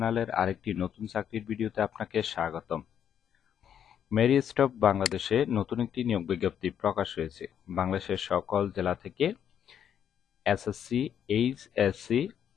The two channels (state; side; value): quieter; right; 9.0 dB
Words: আরেকটি নতুন চাকরির ভিডিওতে আপনাকে স্বাগতম। মেরি স্টপ বাংলাদেশে নতুন একটি নিয়োগ বিজ্ঞপ্তি প্রকাশ হয়েছে। বাংলাদেশের সকল জেলা থেকে এসএসসি, এইচএসসি